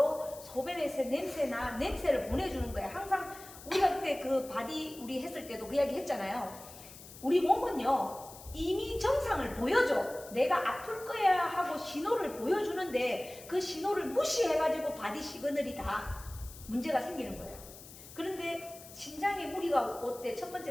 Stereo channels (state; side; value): noise; left; hiss, 17 dB below the sound